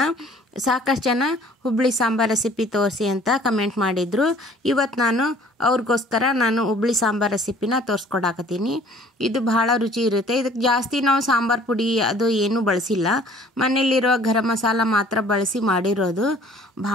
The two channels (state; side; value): normal; both; correlation 0.54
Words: ಸಾಕಷ್ಟು ಜನ ಹುಬ್ಳಿ ಸಾಂಬಾರು ರೆಸಿಪಿ ತೋರಿಸಿ ಅಂತ ಕಮೆಂಟ್ ಮಾಡಿದರು. ಇವತ್ತು ಅವ್ರಿಗೋಸ್ಕರ ನಾನು ಹುಬ್ಳಿ ಸಾಂಬಾರು ರೆಸಿಪಿನ ತೋರಿಸ್ಕೊಡಾಕತ್ತೀನಿ. ಇದು ಬಹಳ ರುಚಿ ಇರುತ್ತೆ. ಇದಕ್ಕೆ ಜಾಸ್ತಿ ನಾವು ಸಾಂಬಾರು ಪುಡಿ ಅದು ಏನೂ ಬಳಸಿಲ್ಲ, ಮನೆಯಲ್ಲಿರೋ ಗರಂ ಮಸಾಲ ಮಾತ್ರ ಬಳಸಿ ಮಾಡಿರೋದು.